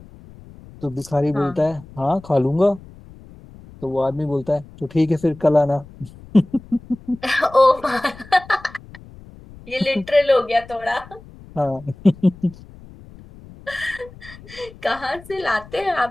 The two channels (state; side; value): noise; left; rumble, 20 dB below the sound